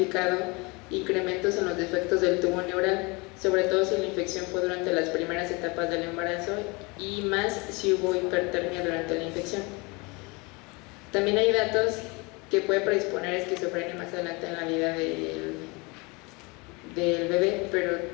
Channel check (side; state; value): right; quieter; 27.3 dB